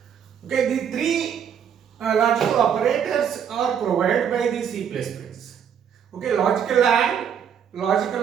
Okay, the three logical operators are provided by the C++. Okay, logical and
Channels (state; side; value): quieter; left; 8.2 dB